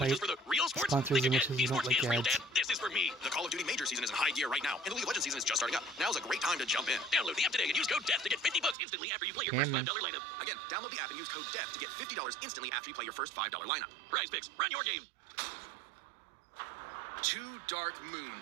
just for the real sports. sponsors Think unless again. you don't Esports like is real, ads. Dad. This is for me. The Call of Duty Major season is in high gear right now, and the League of Legends season is just starting up. Now's a great time to jump in. Download the app today and use code DEATH to get $50 instantly after you play your first Damn. $5 lineup. Again, download the app and use code DEATH to get $50 instantly after you play your first $5 lineup. Prize Picks, run your game. 2 dark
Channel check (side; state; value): left; drops out; at 8.8 s